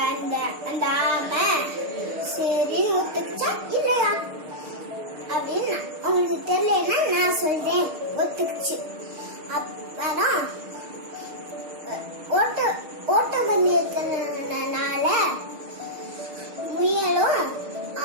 அந்த ஆமை சரி ஒத்துக்குச்சா இல்லையா அப்படின்னு உங்களுக்கு தெரியலன்னா நான் சொல்றேன். ஒத்துக்குச்சு. அப்பதான் ஓட்ட பந்தயத்தினால முயலும்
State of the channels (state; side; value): late; left; 6.5 ms